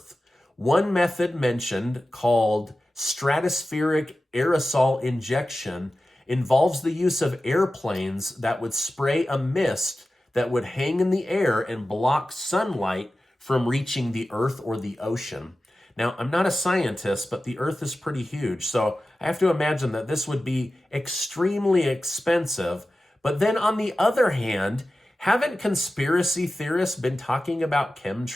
One method mentioned, called stratospheric aerosol injection, involves the use of airplanes that would spray a mist that would hang in the air and block sunlight from reaching the Earth or the ocean. Now, I'm not a scientist, but the Earth is pretty huge, so I have to imagine that this would be extremely expensive. But then on the other hand, haven't conspiracy theorists been talking about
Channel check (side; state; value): both; normal; correlation 0.94